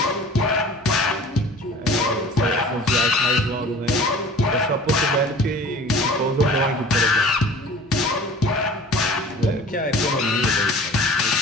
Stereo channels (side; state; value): both; normal; correlation 0.44